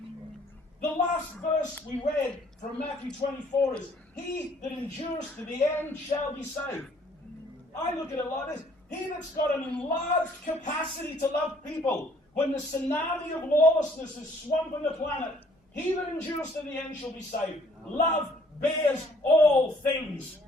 The last verse we read from Matthew 24 is, he that endures to the end shall be saved. I look at it like this. He that's got an enlarged capacity to love people, when the tsunami of lawlessness is swamping the planet, he that endures to the end shall be saved. Love bears all things.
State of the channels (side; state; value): both; normal; correlation 0.60